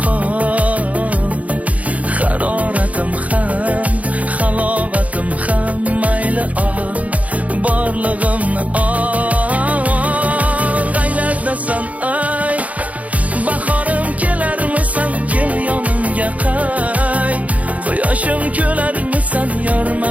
qol. Haroratim ham, halovatim ham, mayli ol, borlig'imni ol. Qaylardasan ay, bahorim kelarmisan, kel yonimga qay. Quyoshim kelarmisan, yor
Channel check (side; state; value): left; late; 0.069 ms